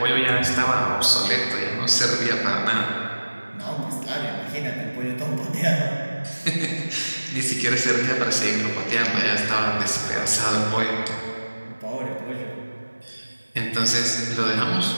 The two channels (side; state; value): both; inverted; correlation -1.00